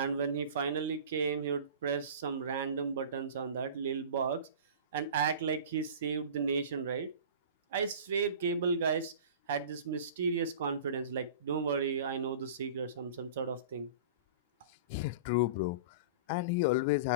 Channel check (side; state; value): both; inverted; correlation -0.37